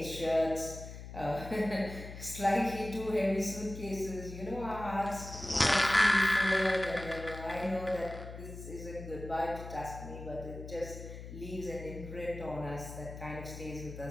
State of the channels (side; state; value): left; noise; hum, 11 dB below the sound